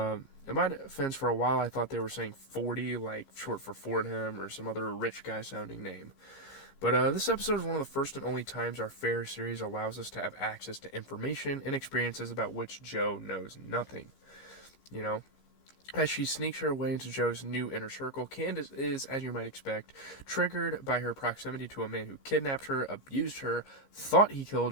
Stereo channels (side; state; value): right; late; 15 ms